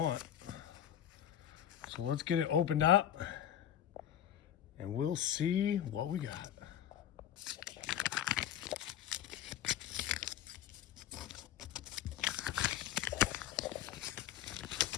So let's get it opened up and we'll see what we got.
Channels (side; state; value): right; quieter; 10.8 dB